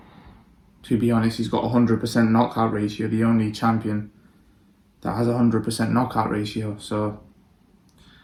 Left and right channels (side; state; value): both; identical; correlation 1.00